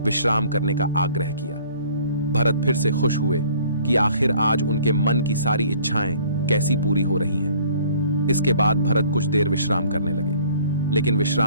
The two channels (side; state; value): both; inverted; correlation -0.54